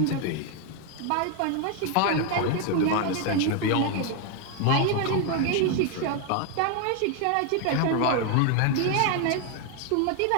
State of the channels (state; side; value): different; both; correlation 0.01